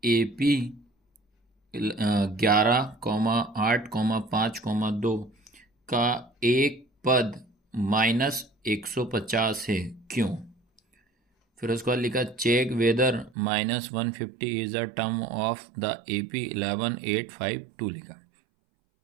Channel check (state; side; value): drops out; left; at 13.4 s